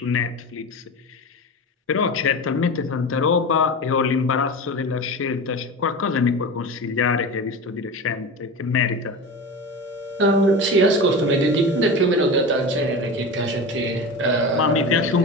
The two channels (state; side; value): normal; both; correlation 0.27